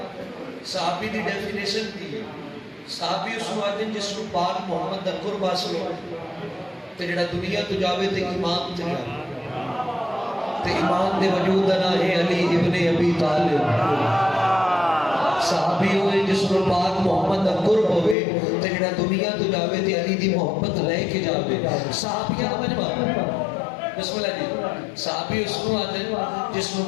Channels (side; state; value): right; drops out; at 18.2 s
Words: सहाबी दी डेफिनेशन दी सहाबी उसनु आदे जिसनु पाक मोहम्मद दा कुर्ब हासिल हो ते जेड़ा दुनिया तो जावे ते ईमान ते जावे ते ईमान दे वजूद दा ना है अली इब्ने अबी तालिब सहाबी होए जिसको पाक मोहम्मद दा कुर्ब होवे ते जेड़ा दुनिया तो जावे ते अली दी मोहब्बत लेके जावे सहाबियां दा मजमा बिस्मिल्लाह जी सहाबी उसको आते जिसको